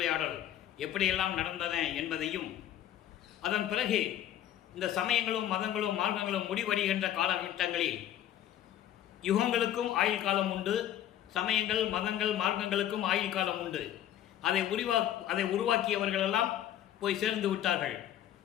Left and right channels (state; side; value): quieter; right; 11.5 dB